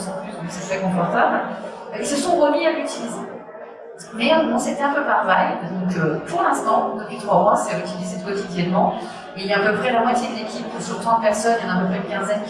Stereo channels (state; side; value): identical; both; correlation 1.00